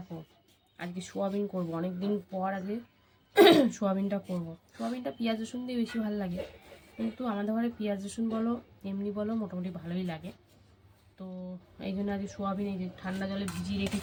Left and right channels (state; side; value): identical; both; correlation 1.00